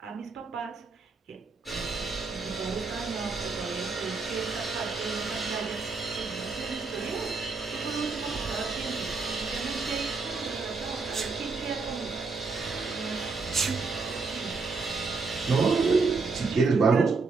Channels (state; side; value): quieter; left; 4.2 dB